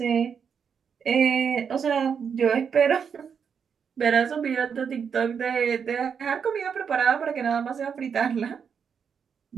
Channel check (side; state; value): left; quieter; 6.9 dB